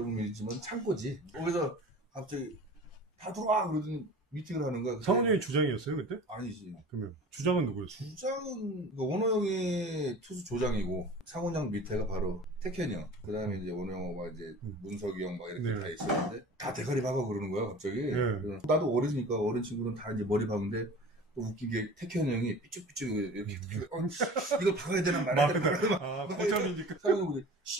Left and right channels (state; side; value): normal; both; correlation 0.40